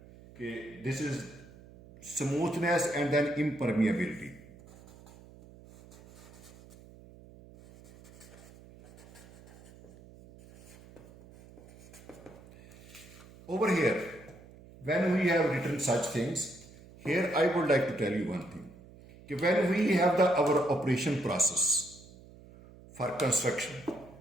this is smoothness and then impermeability. Over here, when we have written such things, here I would like to tell you one thing. When we have our operation process for construction,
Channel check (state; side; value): noise; right; hum, 21 dB below the sound